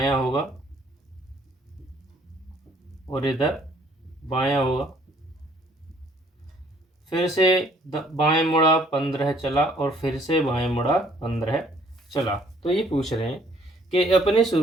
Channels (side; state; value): both; normal; correlation 0.62